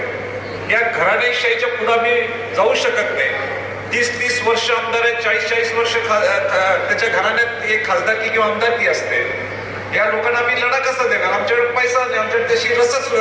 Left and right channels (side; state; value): both; identical; correlation 1.00